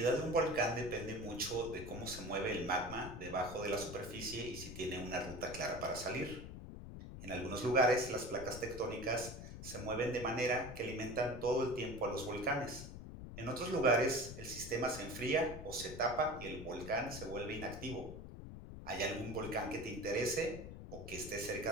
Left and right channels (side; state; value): left; noise; rumble, 10 dB below the sound